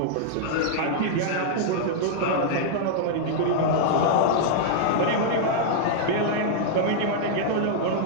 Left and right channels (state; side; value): different; both; correlation -0.01